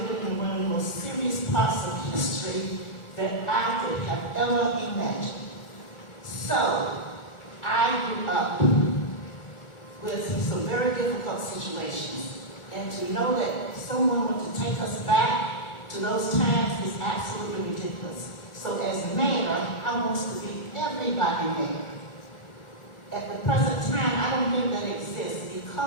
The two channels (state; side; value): late; right; 1.4 ms